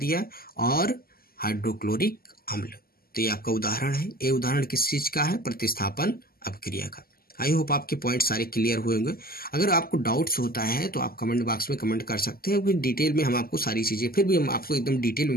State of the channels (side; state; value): right; late; 0.43 ms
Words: और हाइड्रोक्लोरिक अम्ल। तो ये आपका उदाहरण है। ये उदाहरण किस चीज का है, प्रतिस्थापन अभिक्रिया का। आई होप आपके पॉइंट सारे क्लियर हुए होंगे। अगर आपको डाउट्स होता है तो आप कमेंट बॉक्स में कमेंट कर सकते हैं, क्योंकि डिटेल में हम आपको सारी चीज़ें, फिर भी हम आपको एकदम डिटेल में